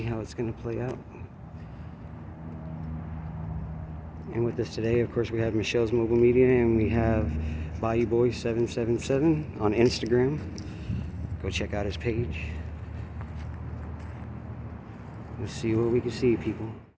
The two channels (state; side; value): identical; both; correlation 1.00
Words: how it's going to play out. And with us today, of course, we have Michelle's Mobile Media, and we have Bayou Boy 777 on Instagram. Go check out his page. Let's see what we can see, people.